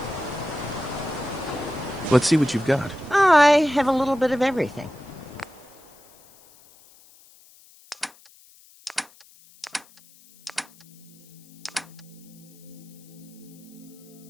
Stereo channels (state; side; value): noise; left; hiss, 26 dB below the sound